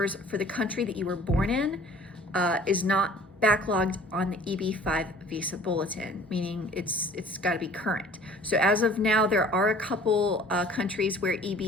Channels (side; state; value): both; normal; correlation 0.50